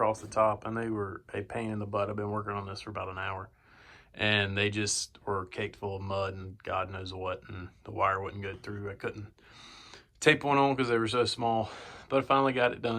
the top, and they were a pain in the butt. I've been working on this for about an hour, and they just were caked full of mud and God knows what, and the wire wouldn't go through. I couldn't tape one on because they were so small, but I finally got it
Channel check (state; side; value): identical; both; correlation 1.00